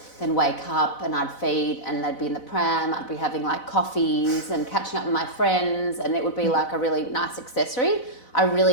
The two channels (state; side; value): late; right; 4.0 ms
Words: then wake up and I'd feed and they'd be in the pram, I'd be having like coffees and catching up with my friends and it would be like a really nice accessory. I